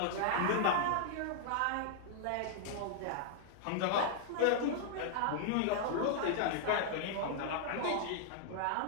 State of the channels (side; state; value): both; different; correlation -0.01